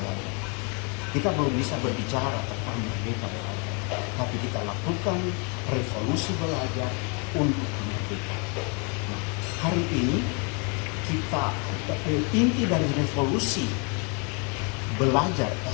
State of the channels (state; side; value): quieter; right; 34.9 dB